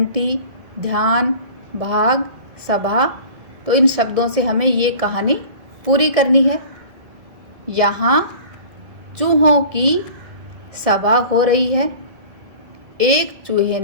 ध्यान, भाग, सभा। तो इन शब्दों से हमें ये कहानी पूरी करनी है। यहाँ चूहों की सभा हो रही है। एक चूहे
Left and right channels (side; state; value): left; late; 2.0 ms